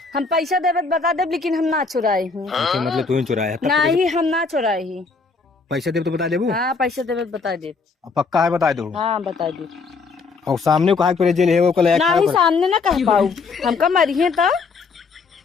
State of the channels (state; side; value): quieter; right; 4.5 dB